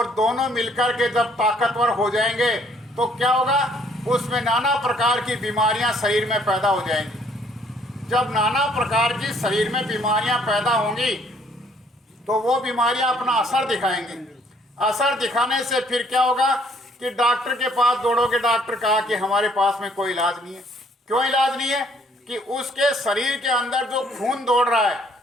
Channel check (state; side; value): normal; both; correlation 0.63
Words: दोनों मिलकर के जब ताकतवर हो जाएंगे तो क्या होगा, उसमें नाना प्रकार की बीमारियां शरीर में पैदा हो जाएंगी। जब नाना प्रकार की शरीर में बीमारियां पैदा होंगी तो वो बीमारियां अपना असर दिखाएंगी। असर दिखाने से फिर क्या होगा कि डॉक्टर के पास दौड़ोगे, डॉक्टर कहा कि हमारे पास में कोई इलाज नहीं है। क्यों इलाज नहीं है कि उसके शरीर के अंदर जो खून दौड़ रहा है,